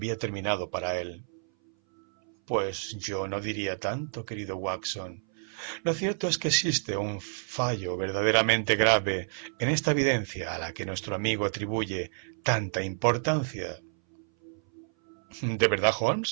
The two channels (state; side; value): silent; left; 58 dB below the other